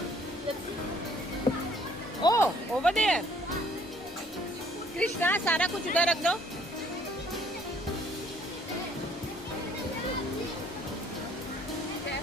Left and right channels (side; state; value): both; normal; correlation 0.61